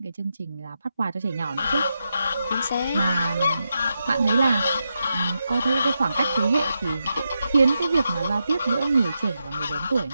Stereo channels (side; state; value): both; inverted; correlation -0.87